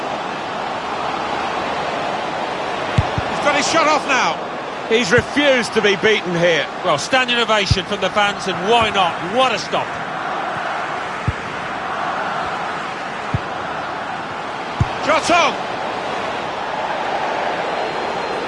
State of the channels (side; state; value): both; identical; correlation 1.00